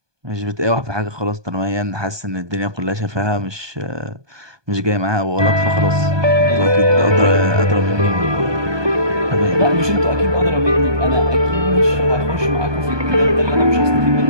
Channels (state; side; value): late; left; 1.2 ms